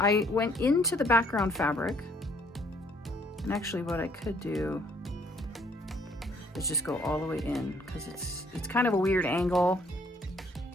went into the background fabric, and actually what I could do is just go all the way in, because it's kind of a weird angle,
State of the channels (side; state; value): both; normal; correlation 0.63